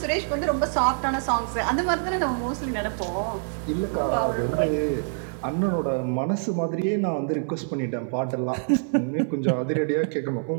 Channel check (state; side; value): silent; left; digital silence